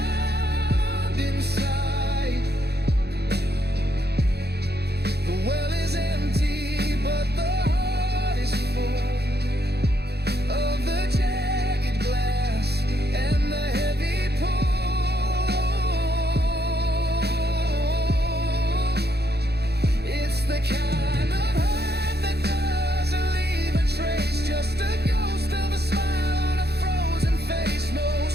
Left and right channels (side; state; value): left; late; 0.48 ms